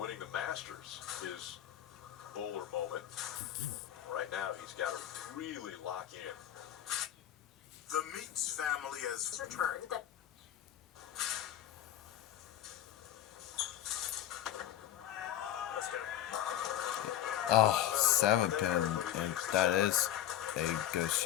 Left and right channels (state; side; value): quieter; right; 12.0 dB